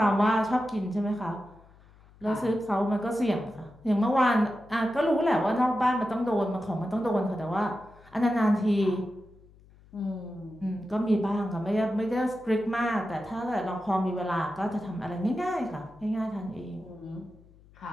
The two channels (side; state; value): left; noise; hum, 26 dB below the sound